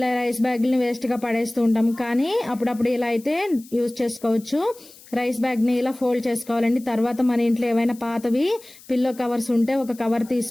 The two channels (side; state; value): left; noise; hiss, 22 dB below the sound